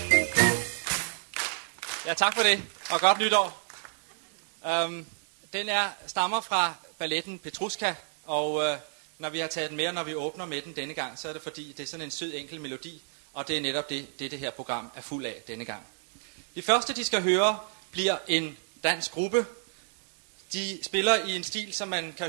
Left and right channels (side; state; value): left; silent; digital silence